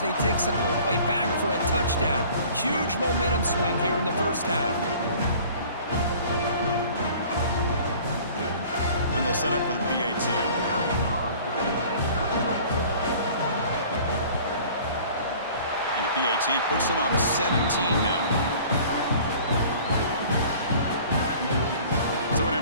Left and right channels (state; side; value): inverted; both; correlation -0.48